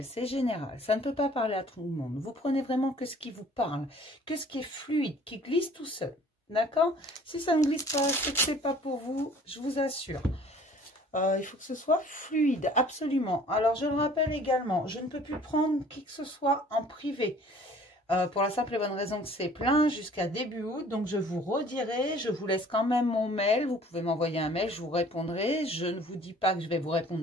c'est général, ça ne peut pas parler à tout le monde. Vous prenez vraiment que ce qui vous parle, que ce qui est fluide, qui glisse tout seul. D'accord? Si ça ne glisse pas, c'est que c'est pas pour vous, je vous assure. Il faut que ce soit fluide, absolument. Alors, je le rappelle également, je ne peux plus prendre qui que ce soit en privé. Pour la simple et bonne raison que c'est plein jusqu'à début août. Donc, je vous redirai, je vous laisse quand même mon mail. Vous pouvez m'envoyer un mail, je vous répondrai. Je ne vous dis pas que je vais vous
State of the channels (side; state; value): both; normal; correlation 0.52